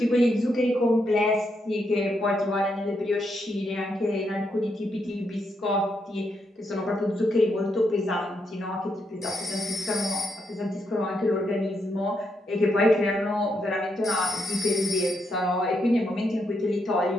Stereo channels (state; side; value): normal; both; correlation 0.79